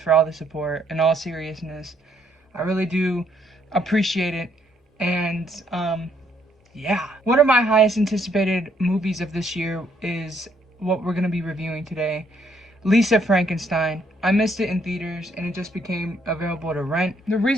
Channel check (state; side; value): normal; both; correlation 0.70